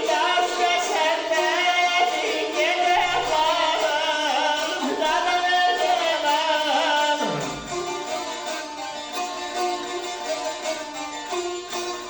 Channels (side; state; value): both; identical; correlation 1.00